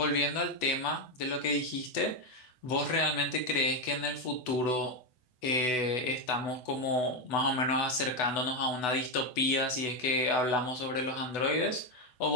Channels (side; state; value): right; late; 8.0 ms